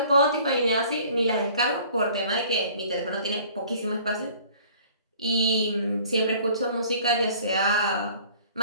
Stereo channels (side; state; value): both; inverted; correlation -0.52